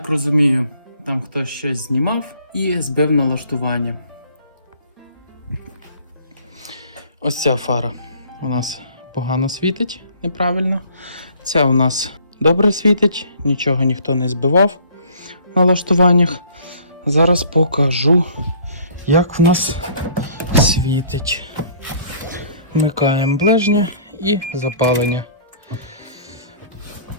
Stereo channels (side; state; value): both; inverted; correlation -0.54